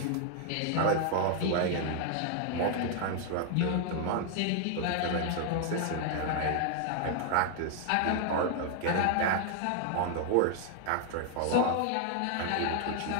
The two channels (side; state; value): both; different; correlation 0.00